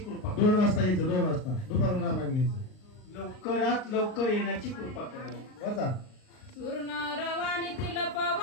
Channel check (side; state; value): right; late; 38 ms